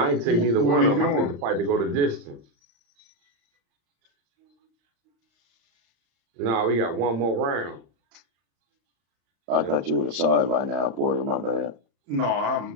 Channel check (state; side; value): late; left; 35 ms